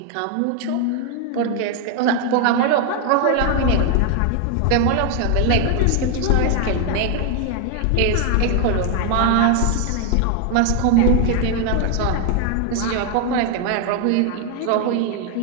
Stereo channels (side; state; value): both; different; correlation 0.01